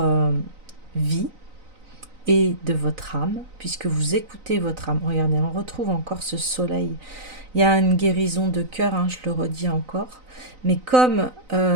vie et de votre âme, puisque vous écoutez votre âme. Regardez, on retrouve encore ce soleil. Il y a une guérison de cœur, hein, je le redis encore. Mais comme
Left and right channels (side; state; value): left; late; 3.9 ms